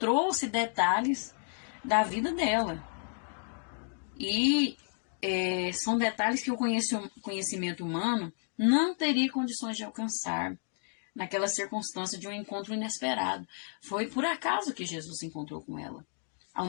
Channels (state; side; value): silent; right; 57 dB below the other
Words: detalhes da vida dela. E são detalhes que o conhecimento humano não teria condições de alcançar naquela circunstância de um encontro inesperado. Foi por acaso que Jesus se encontrou com ela. Ao